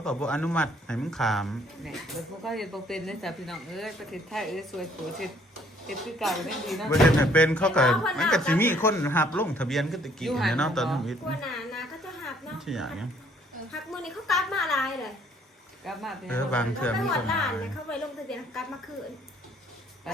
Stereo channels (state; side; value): normal; both; correlation 0.63